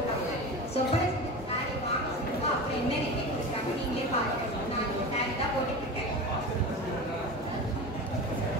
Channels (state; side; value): normal; both; correlation 0.29